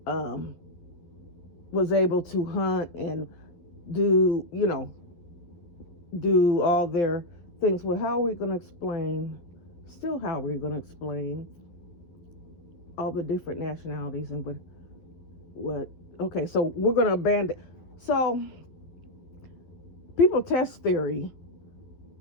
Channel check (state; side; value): late; right; 12 ms